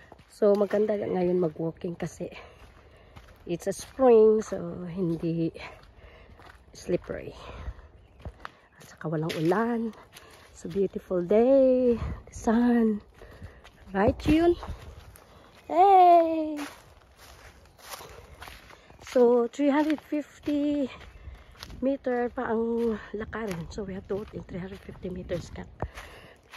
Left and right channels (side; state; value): both; identical; correlation 1.00